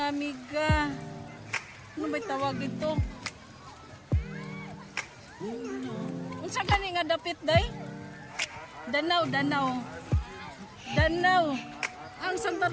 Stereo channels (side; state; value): both; identical; correlation 1.00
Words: amiga. Ano ba'y tawag dito? Unsa gani nga dapit day? Danaw, danaw. Danaw. Ang Santa